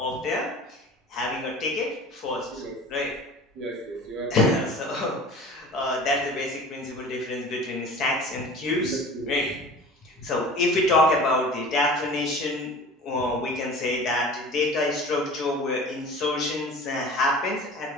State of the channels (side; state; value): both; normal; correlation 0.40